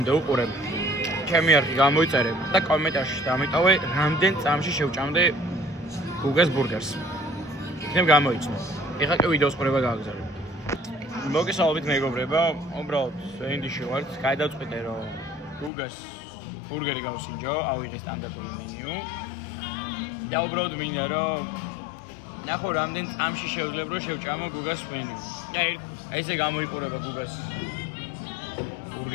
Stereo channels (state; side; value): drops out; right; at 15.7 s